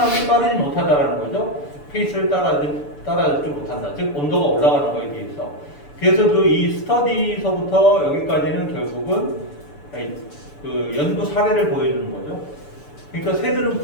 빠르지 못하다라는 거죠. 페이스를 따라주지 못한다. 즉 온도가 올라가는 거에 비해서. 그래서 이 스터디서부터 여기까지는 결국은 그 연구 사례를 보여주는 거죠. 그러니까 새들은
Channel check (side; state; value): right; late; 6.9 ms